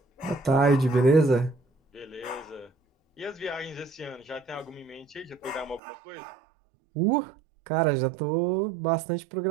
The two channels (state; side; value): drops out; left; at 5.8 s